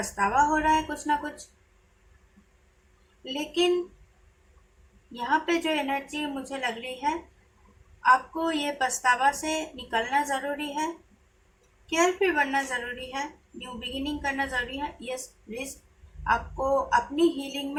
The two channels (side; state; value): both; identical; correlation 1.00